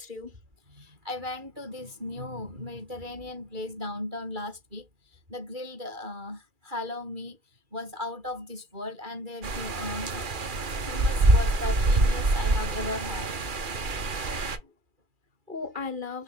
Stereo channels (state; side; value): late; left; 2.4 ms